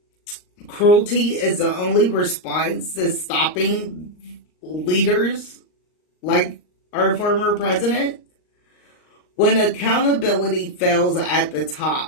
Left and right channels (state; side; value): late; right; 39 ms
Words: cruelty is the only response to stopping leaders like our former president? When accountability fails at the